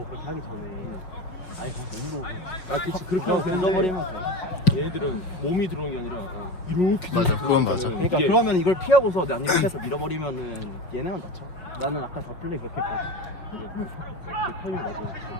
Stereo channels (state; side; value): late; right; 6.2 ms